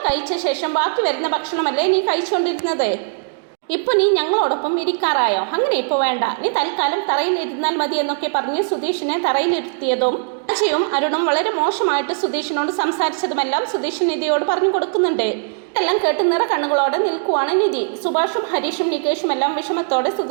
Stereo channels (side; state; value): left; silent; digital silence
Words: കഴിച്ച ശേഷം ബാക്കി വരുന്ന ഭക്ഷണമല്ലേ നീ കഴിച്ചുകൊണ്ടിരുന്നത്? ഇപ്പോൾ നീ ഞങ്ങളോടൊപ്പം ഇരിക്കാറായോ? അങ്ങനെ ഇപ്പോൾ വേണ്ട, നീ തൽക്കാലം തറയിൽ ഇരുന്നാൽ മതി എന്നൊക്കെ പറഞ്ഞ് സുധീഷിനെ തറയിലിരുത്തിയതും അജയും അരുണും വളരെ മോശമായിട്ട് സുധീഷിനോട് സംസാരിച്ചതുമെല്ലാം സുധീഷ് നിധിയോട് പറഞ്ഞു കൊടുക്കുന്നുണ്ട്. ഇതെല്ലാം കേട്ട് നിറ കണ്ണുകളോടെ നിൽക്കുവാണ് നിധി. സുഭാഷും ഹരീഷും നികേഷും എല്ലാം വിഷമത്തോടെ